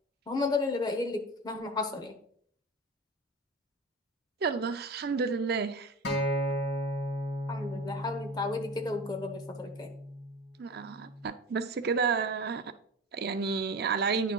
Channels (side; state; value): both; normal; correlation 0.32